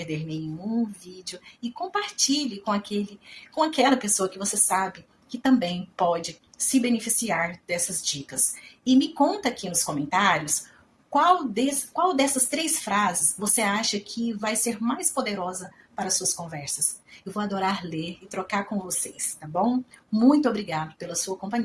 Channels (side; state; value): both; identical; correlation 1.00